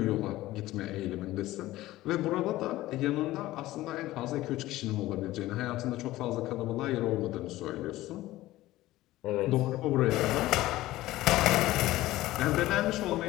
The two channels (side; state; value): right; quieter; 16.6 dB